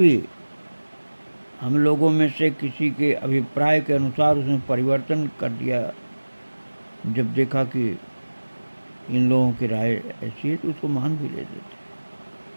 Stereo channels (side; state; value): both; inverted; correlation -1.00